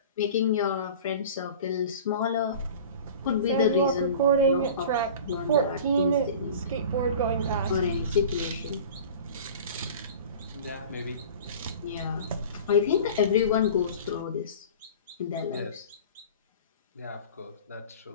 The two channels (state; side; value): inverted; both; correlation -0.39